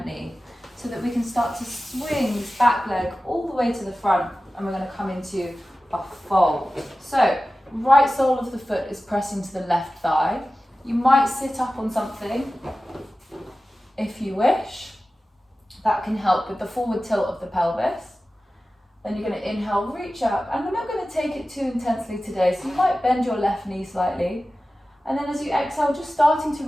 knee. so that we can start to swing this back leg all the way to the front, and we're going to come into a fold. So right sole of the foot is pressing to the left thigh. You might sit up on something if you wish. That can help with the forward tilt of the pelvis. Then you're going to inhale, reach up, and we're not going to take it too intensely today, so you might bend your left knee slightly. And then as you exhale, just starting to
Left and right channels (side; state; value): both; normal; correlation 0.95